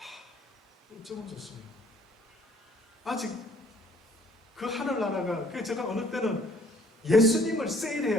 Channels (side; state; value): both; normal; correlation 0.59